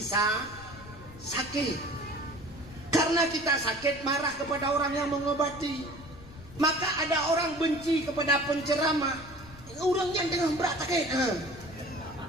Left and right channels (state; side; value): noise; left; rumble, 18 dB below the sound